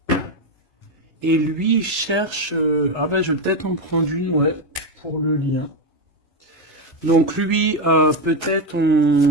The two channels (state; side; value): normal; both; correlation 0.09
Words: Et lui, il cherche... ah ben, je vais peut-être en prendre une, ouais, pour le lien. Donc lui, peut-être